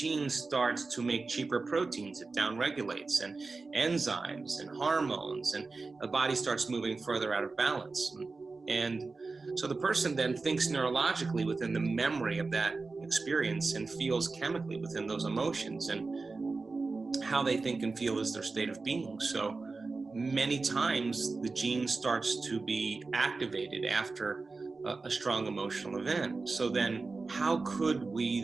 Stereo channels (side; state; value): left; quieter; 3.9 dB